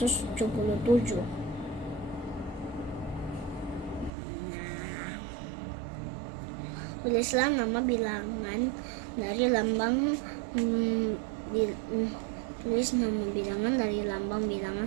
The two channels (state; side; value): drops out; left; at 4.1 s